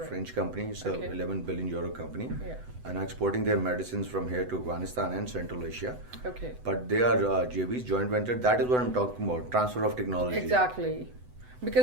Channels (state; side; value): late; left; 8.0 ms